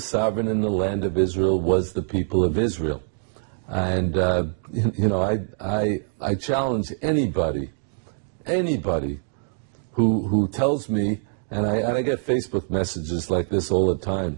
in the land of Israel was the people of Israel. And, I challenge anybody who tells me, and I get Facebook messages like this all the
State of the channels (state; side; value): silent; left; digital silence